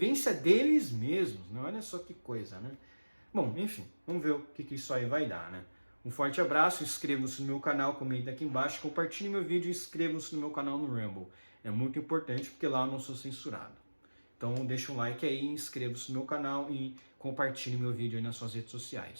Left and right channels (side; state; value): both; inverted; correlation -1.00